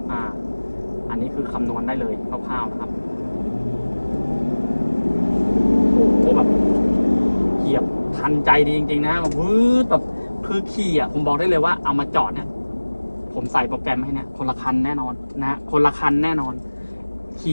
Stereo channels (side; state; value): both; inverted; correlation -1.00